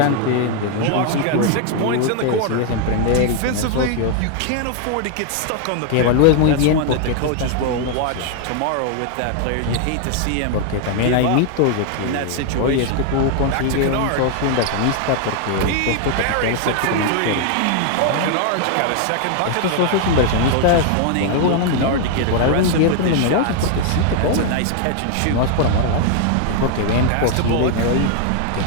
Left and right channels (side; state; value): both; different; correlation 0.00